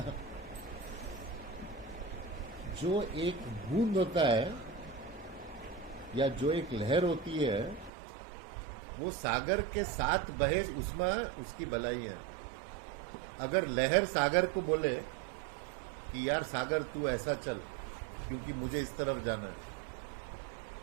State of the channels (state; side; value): drops out; left; at 7.9 s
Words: जो एक बूंद होता है या जो एक लहर होती है वो सागर के साथ बहे, उसमें उसकी भलाई है। अगर लहर सागर को बोले कि यार सागर तू ऐसा चल क्योंकि मुझे इस तरफ जाना है,